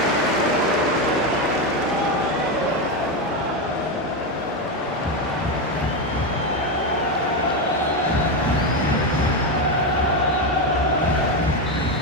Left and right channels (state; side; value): normal; both; correlation 0.11